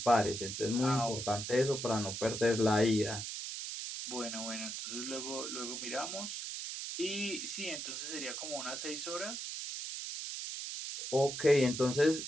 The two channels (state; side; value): noise; right; hiss, 5 dB below the sound